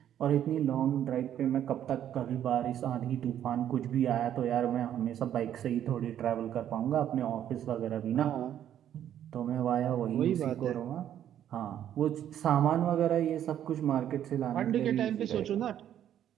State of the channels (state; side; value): quieter; left; 10.6 dB